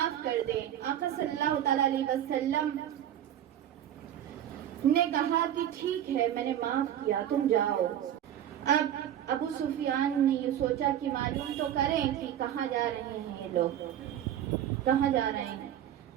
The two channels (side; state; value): left; quieter; 10.8 dB